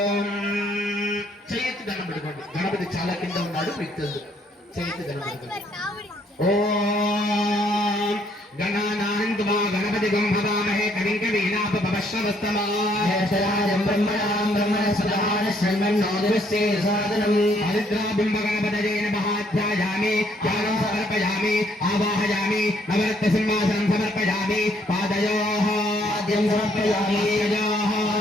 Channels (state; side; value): normal; both; correlation 0.67